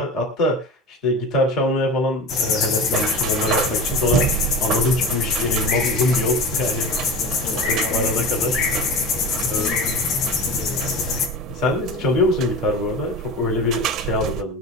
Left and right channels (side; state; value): both; normal; correlation 0.30